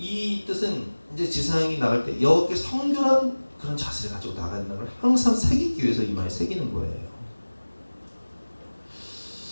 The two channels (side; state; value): both; inverted; correlation -1.00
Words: 뜻은 이제 지상이 나갈 때 여호와께 성결한 그런 자세를 가지고 나가는 걸 항상 새기기 위해서 이마에 새기는 거예요.